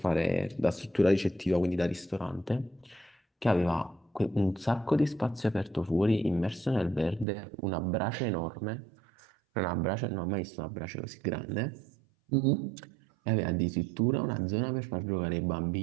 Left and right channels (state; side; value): drops out; left; at 7.2 s